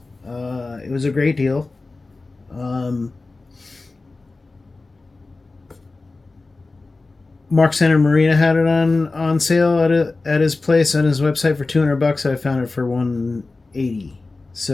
it was a great deal. Mark Santamaria had it on sale at his place on his website for $200. I found it for $180.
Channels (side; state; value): right; quieter; 3.5 dB